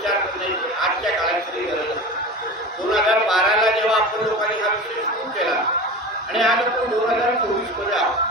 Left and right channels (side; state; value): both; normal; correlation 0.31